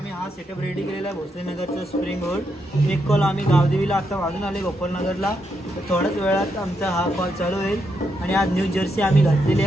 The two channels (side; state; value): both; normal; correlation 0.80